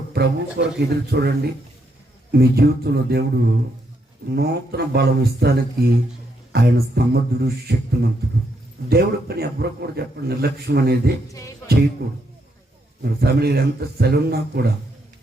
ప్రభు కొరకు ఎదురు చూడండి. మీ జీవితంలో దేవుడు నూతన బలం ఇస్తానికి ఆయన సమర్థుడు, శక్తిమంతుడు. దేవుడి పని ఎవరు కూడా చెప్పండి, నిర్లక్ష్యం అనేది చేయకూడదు. మరి ఫ్యామిలీ ఎంత సెలవున్నా కూడా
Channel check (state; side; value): normal; both; correlation 0.77